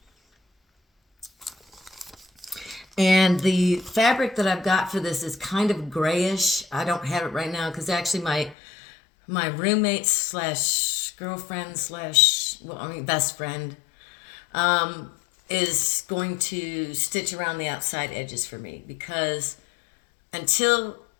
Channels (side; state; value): right; drops out; at 8.6 s